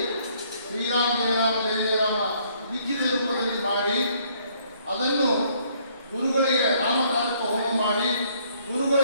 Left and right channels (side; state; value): both; inverted; correlation -0.65